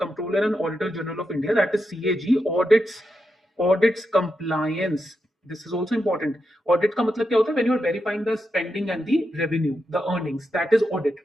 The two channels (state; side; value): normal; both; correlation 0.86